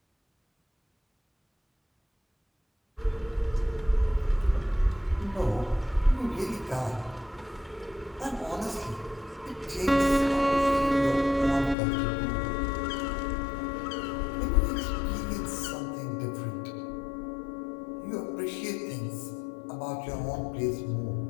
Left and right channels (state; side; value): drops out; right; at 11.8 s